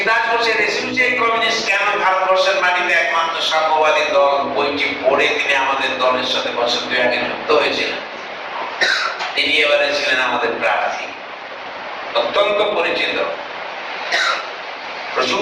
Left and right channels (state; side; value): identical; both; correlation 1.00